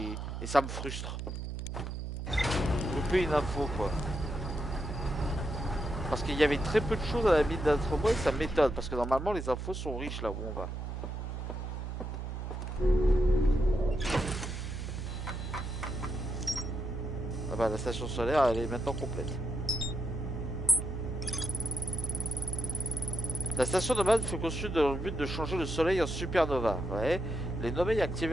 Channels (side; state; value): right; noise; hum, 5 dB below the sound